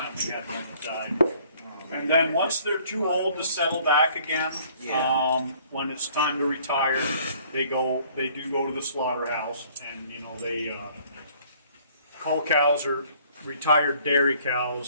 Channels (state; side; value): inverted; both; correlation -0.58